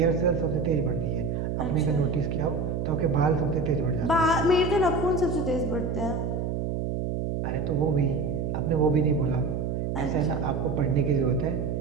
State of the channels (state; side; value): noise; right; hum, 2 dB below the sound